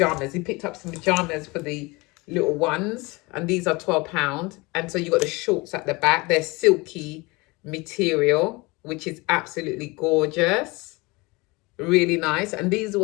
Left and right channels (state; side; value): quieter; right; 24.6 dB